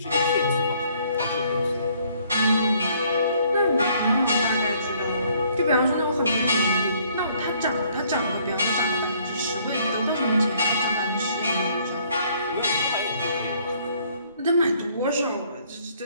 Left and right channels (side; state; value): both; inverted; correlation -0.63